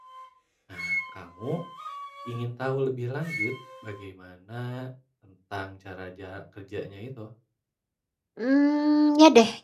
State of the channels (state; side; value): identical; both; correlation 1.00